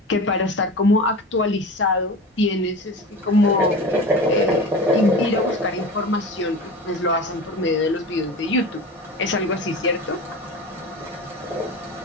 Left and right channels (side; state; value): both; normal; correlation 0.32